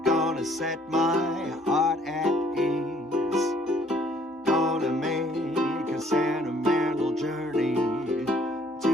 gonna set my heart at ease. Gonna make a sentimental journey to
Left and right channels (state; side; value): normal; both; correlation 0.61